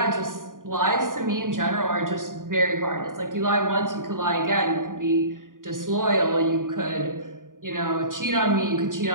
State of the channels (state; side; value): late; left; 0.89 ms